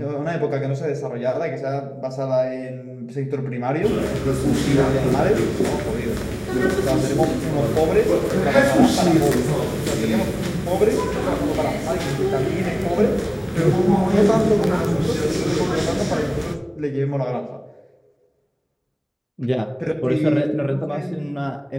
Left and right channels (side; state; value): both; identical; correlation 1.00